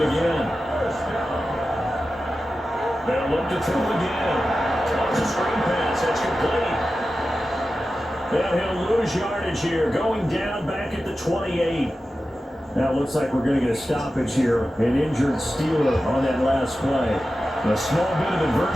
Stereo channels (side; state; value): both; normal; correlation 0.93